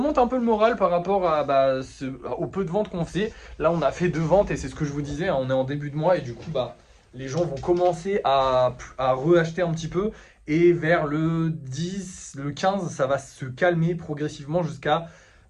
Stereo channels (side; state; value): both; identical; correlation 1.00